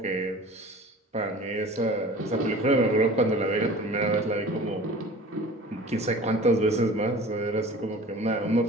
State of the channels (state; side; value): normal; both; correlation 0.41